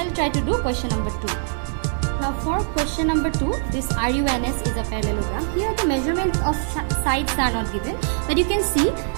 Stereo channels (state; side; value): silent; left; digital silence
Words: try to do question number 2. Now for question number 2, this RUNS is a parallelogram. Here the measurements of sides are not given, but you can see